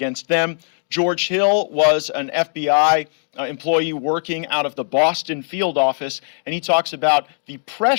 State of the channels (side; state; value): right; silent; digital silence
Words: them. George Hill was an FBI employee working out of the Boston field office, and he talks about the